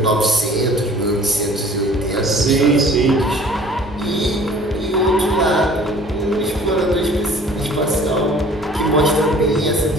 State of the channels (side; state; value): both; normal; correlation 0.50